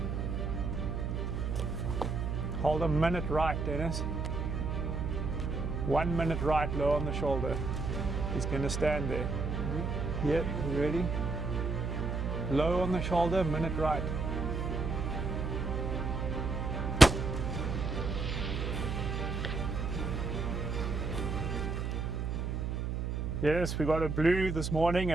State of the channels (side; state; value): right; noise; hum, 2 dB below the sound